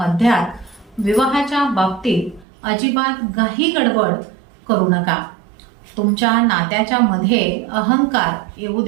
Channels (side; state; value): left; drops out; at 2.5 s